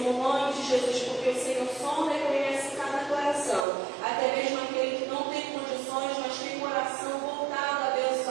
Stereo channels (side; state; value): left; drops out; at 3.7 s